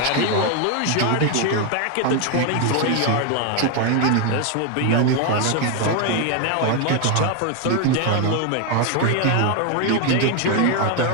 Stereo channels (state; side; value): different; both; correlation 0.01